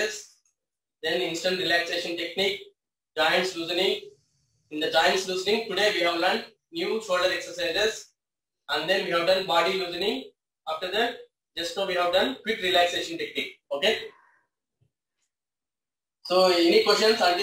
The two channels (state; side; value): identical; both; correlation 1.00